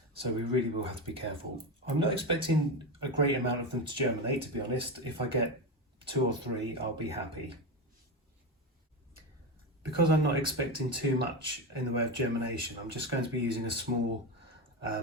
So we really will have to be careful. I'm not expecting a great amount of them to germinate, to be honest. If I get 2 or 3, I'll be happy. Because I'm not expecting too much in the way of germination, I'm just going to be using a small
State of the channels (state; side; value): normal; both; correlation 0.17